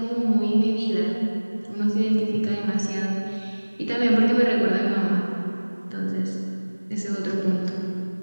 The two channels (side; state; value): both; inverted; correlation -1.00